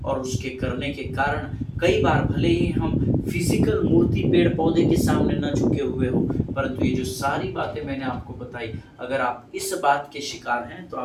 और उसके करने के कारण कई बार भले ही हम फिजिकल मूर्ति पेड़ पौधे के सामने न झुके हुए हो, परंतु ये जो सारी बातें मैंने आपको बताई, अगर आप इस बात के शिकार हैं तो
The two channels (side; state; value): both; identical; correlation 1.00